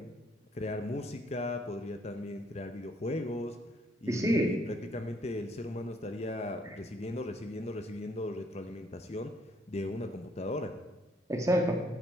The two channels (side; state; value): both; normal; correlation 0.67